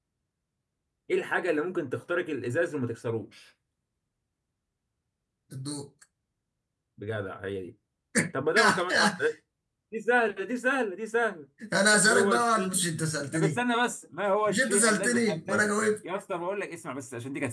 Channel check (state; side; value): identical; both; correlation 1.00